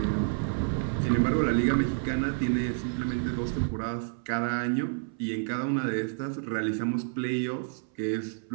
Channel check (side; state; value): left; silent; 58 dB below the other